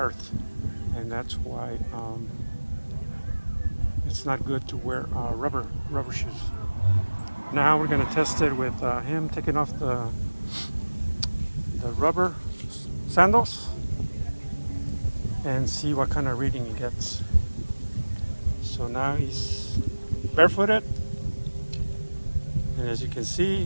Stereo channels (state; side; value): inverted; both; correlation -1.00